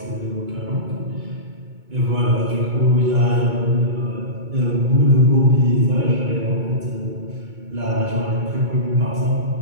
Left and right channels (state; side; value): late; left; 2.2 ms